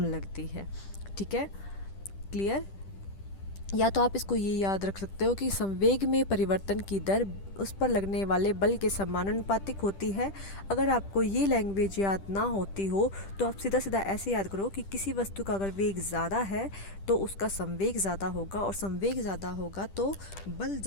लगती है। ठीक है, क्लियर। या तो आप इसको ये याद रख सकते हो कि संवेग में परिवर्तन की दर उस पर लगने वाले बल के समानुपातिक होती है। अगर आपको ये लैंग्वेज याद ना होती हो तो आप सीधा सीधा ऐसे याद करो कि किसी वस्तु का अगर वेग ज़्यादा है तो उसका संवेग ज़्यादा होगा, और संवेग ज़्यादा होगा तो बल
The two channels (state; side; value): late; right; 10 ms